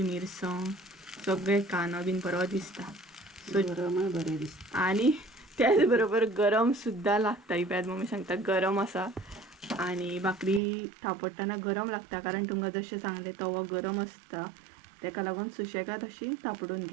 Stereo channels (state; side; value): drops out; left; at 10.6 s